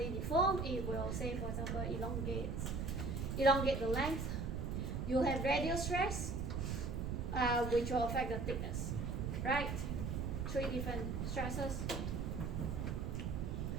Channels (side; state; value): right; noise; rumble, 1 dB below the sound